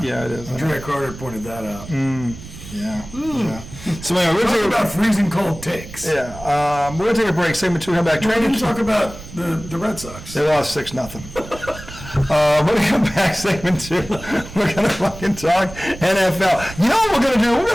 it is. Andrea Carter pointed that out. Yeah. So anyway, we're talking about freezing cold takes. Yeah. We're gonna take a break. Segment 2, come back. We're going to talk about the Red Sox. They lost 6-0. We're going to come back, segment 2. We're going to fucking talk NFL. You know what we're going to do? We're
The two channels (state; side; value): noise; right; rumble, 15 dB below the sound